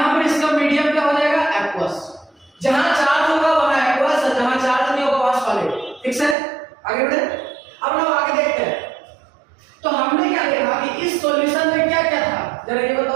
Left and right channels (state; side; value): drops out; left; at 6.4 s